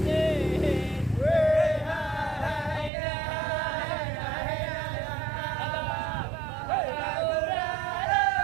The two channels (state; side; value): drops out; left; at 2.9 s